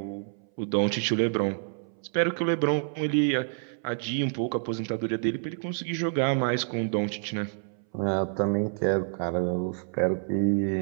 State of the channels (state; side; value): silent; left; 59 dB below the other